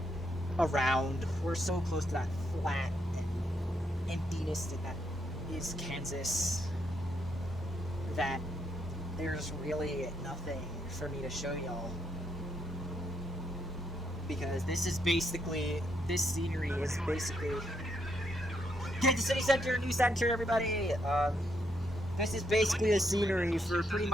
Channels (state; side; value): normal; both; correlation 0.77